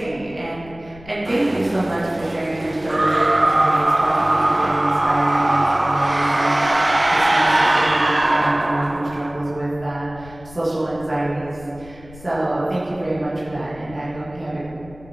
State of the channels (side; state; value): left; noise; rumble, 20 dB below the sound